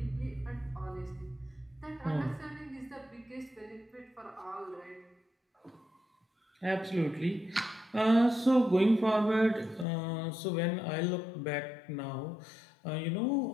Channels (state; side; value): drops out; right; at 9.9 s